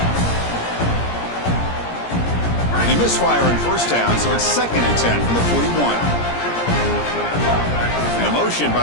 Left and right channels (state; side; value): late; right; 17 ms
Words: They misfire in first down, so it's 2nd and 10 from the 41. And the motion